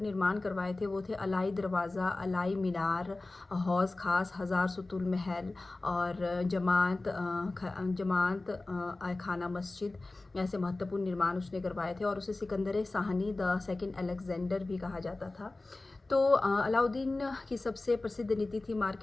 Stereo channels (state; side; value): quieter; right; 3.1 dB